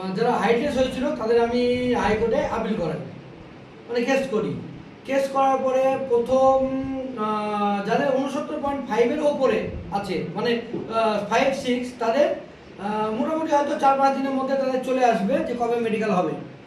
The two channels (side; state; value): both; identical; correlation 1.00